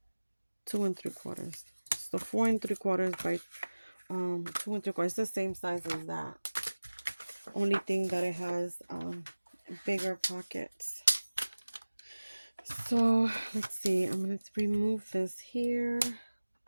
2 3/4. So 4 3/4 by 2 3/4. It's the same size as that. Only thing that it has bigger pockets. So let's see. I'm gonna remove this here.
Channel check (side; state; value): both; inverted; correlation -1.00